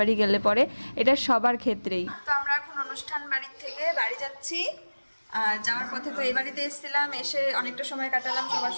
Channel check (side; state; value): both; inverted; correlation -1.00